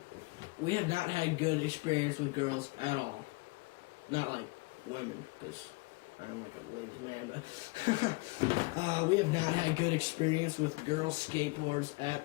We have not had good experience with girls at all. Not like women, because I'm like a ladies' man, but we have not had good experience with girl skateboards at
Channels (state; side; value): quieter; right; 26.5 dB